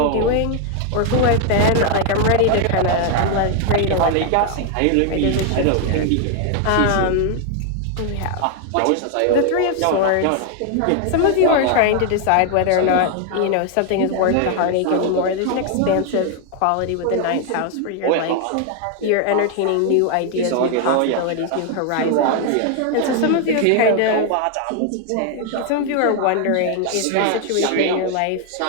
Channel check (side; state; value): both; different; correlation 0.00